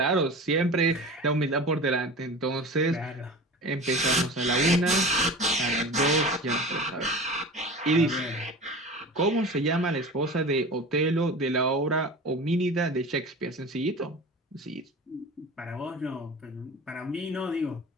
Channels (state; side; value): normal; both; correlation 0.35